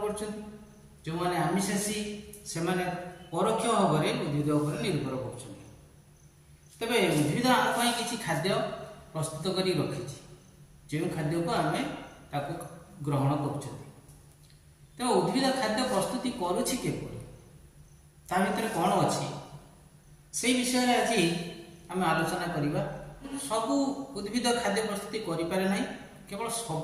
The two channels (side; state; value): both; identical; correlation 1.00